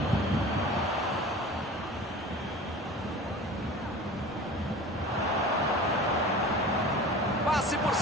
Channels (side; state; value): both; normal; correlation 0.38